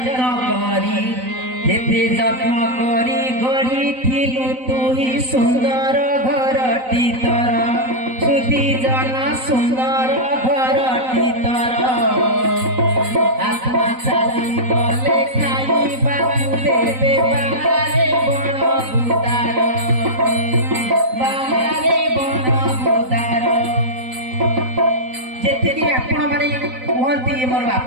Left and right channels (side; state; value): left; late; 3.9 ms